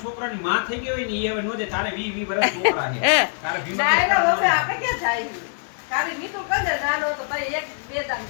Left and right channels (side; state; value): right; silent; digital silence